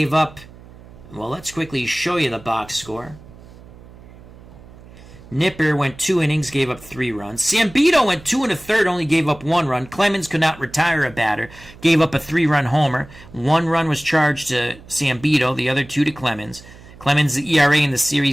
up. Well, let's quickly show you the box score. Nipper went 2 innings, gave up 3 runs. Sambito went 2 1/3, only gave up 1 run. Clemens could not retire a batter, gave up a 3-run homer. 1 run was charged to Sambito, the other 2 to Clemens. Clemens' ERA in the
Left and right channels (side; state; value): right; noise; hum, 20 dB below the sound